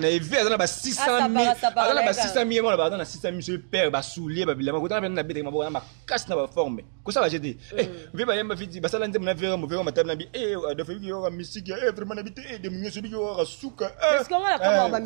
ve na ba 600,000 ala ba 600,000 mo ba na 600,000 sur père ba soulier ba bilamba kota na bete ma ba makas na ba forme ko ça va jeter ve ba yamba fiti ba sala ndem na vera mo vera matana bi de fait yo musique vraiment na bité de munyo so bi yo rasuka parce que on la comme ba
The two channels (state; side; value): silent; left; digital silence